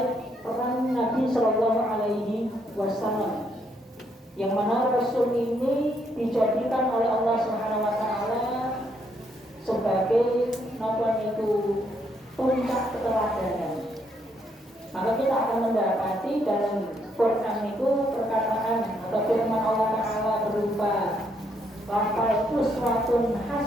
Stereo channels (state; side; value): normal; both; correlation 0.74